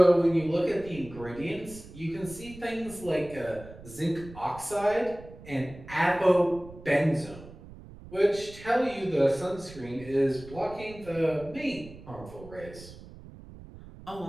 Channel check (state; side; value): noise; right; rumble, 17 dB below the sound